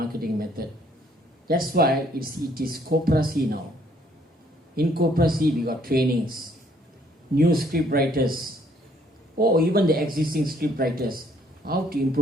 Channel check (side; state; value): both; normal; correlation 0.65